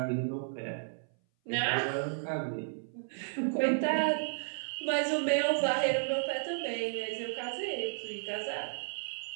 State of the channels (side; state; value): left; silent; 55 dB below the other